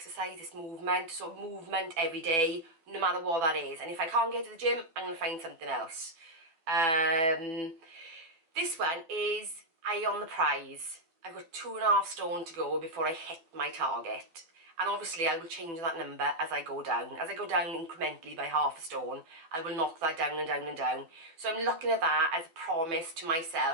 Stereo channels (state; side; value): late; left; 12 ms